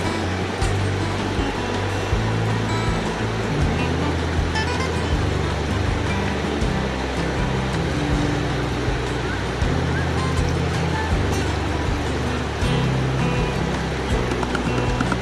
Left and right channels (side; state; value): both; identical; correlation 1.00